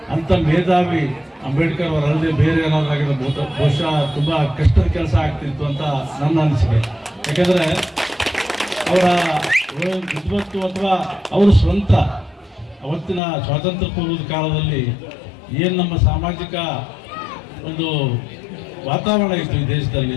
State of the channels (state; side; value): drops out; right; at 13.2 s